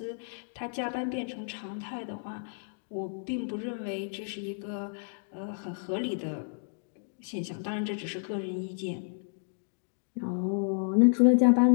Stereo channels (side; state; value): right; silent; digital silence